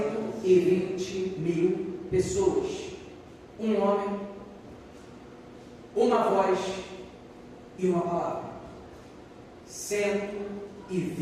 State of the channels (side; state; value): both; identical; correlation 1.00